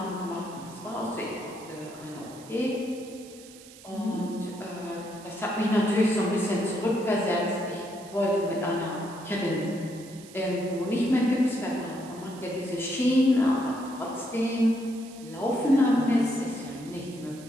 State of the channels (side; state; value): right; noise; hiss, 20 dB below the sound